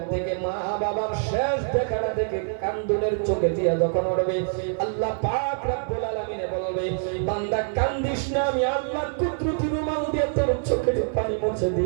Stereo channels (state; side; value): silent; left; 62 dB below the other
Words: থেকে মা বাবার শেষ দেখাটা দেখে কান্দুনের চোখে দিয়া যখন উঠবে, আল্লাহ পাক রব্বুল আলামিন বলবে বান্দা কান্দিস না, আমি আল্লাহর কুদরতি রুমাল দিয়ে তোর চোখের পানি মুছে